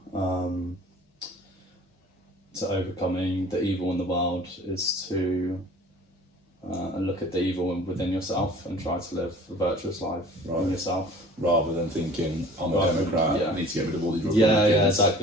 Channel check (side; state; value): both; normal; correlation 0.47